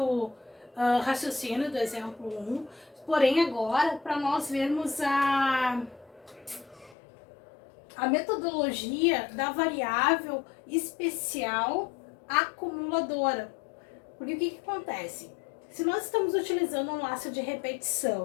raciocínio do exemplo 1, porém agora para nós vermos a metodologia da variável especial acumuladora. Porque o que acontece? Se nós estamos utilizando um laço de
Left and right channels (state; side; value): drops out; right; at 7.0 s